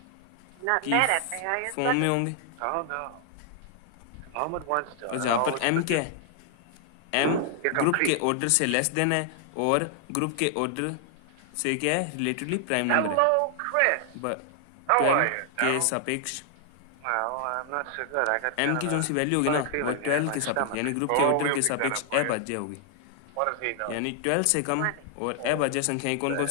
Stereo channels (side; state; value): both; different; correlation 0.00